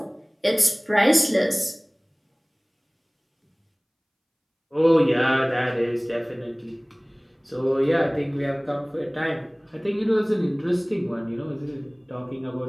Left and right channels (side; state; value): both; identical; correlation 1.00